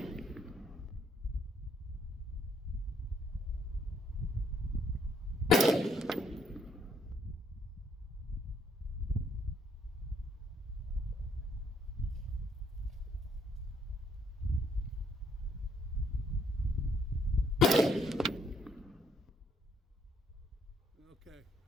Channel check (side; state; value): both; normal; correlation 0.70